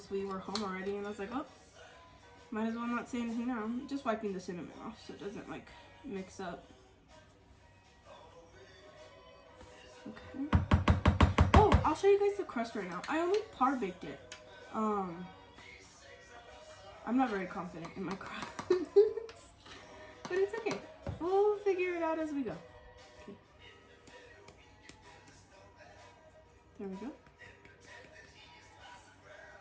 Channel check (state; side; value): identical; both; correlation 1.00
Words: we were home already. And I was like, oh, might as well not say anything now. I'm just wiping the cinnamon off so it doesn't like mix up. Okay. Oh, I'll show you guys the crust right now. I only par baked it. I'm not very confident in my crust. But it's okay. We'll figure it out as we go. Okay. There we go.